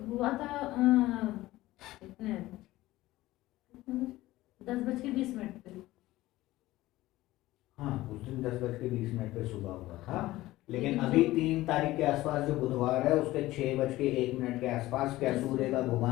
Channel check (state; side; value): quieter; right; 17.1 dB